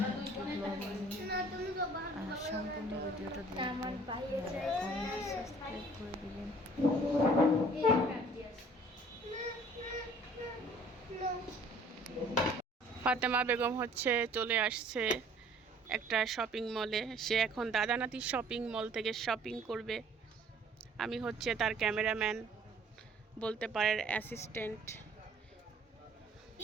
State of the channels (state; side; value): normal; both; correlation 0.54